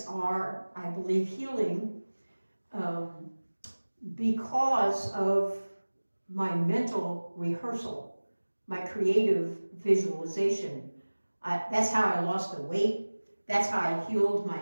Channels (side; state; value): both; inverted; correlation -1.00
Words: are, I believe, healing because of my mental rehearsal, my creative visualization. That's how I lost the weight. That's how I healed my